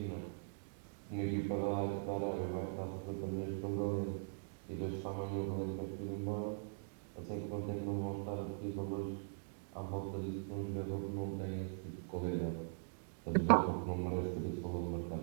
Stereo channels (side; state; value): left; silent; digital silence